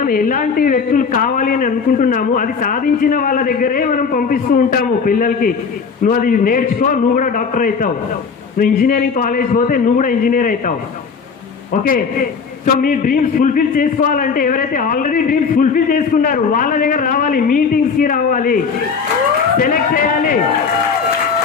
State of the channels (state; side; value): quieter; right; 5.6 dB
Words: ఎలాంటి వ్యక్తులు కావాలి అని అనుకుంటున్నాము అది సాధించిన వాళ్ళ దగ్గరే మనం పంపిస్తూ ఉంటాము పిల్లలకి. నువ్వు అది నేర్చుకో, నువ్వు కూడా డాక్టర్ అవుతావు. నువ్వు ఇంజనీరింగ్ కాలేజ్ పోతే నువ్వు కూడా ఇంజనీర్ అవుతావు. ఓకే. సో మీ డ్రీమ్స్ ఫుల్ఫిల్ చేసుకోవాలంటే ఎవరైతే ఆల్రెడీ డ్రీమ్స్ ఫుల్ఫిల్ చేసుకున్నారు వాళ్ళ దగ్గర రావాలి, మీటింగ్స్కి రావాలి, సెలెక్ట్ చేయాలి.